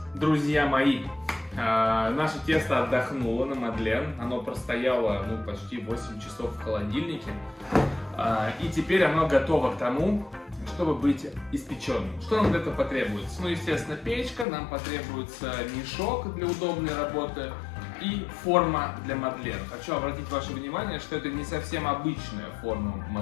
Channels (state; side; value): drops out; right; at 14.5 s